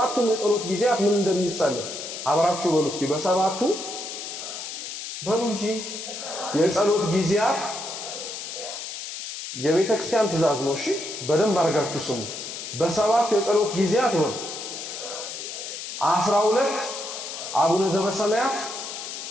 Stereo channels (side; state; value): left; noise; hiss, 8 dB below the sound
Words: የጸሎት ጊዜያት ምን እንደሚጸለይ አብራችሁ በሉ እስኪ። በሰባቱ በሉ እንጂ የጸሎት ጊዜያት የቤተ ክርስቲያን ትእዛዝ ነው። እሺ በደንብ አድርጋችሁ ስሙ። በሰባቱ የጸሎት ጊዜያት ነው 12 አቡነ ዘበሰማያት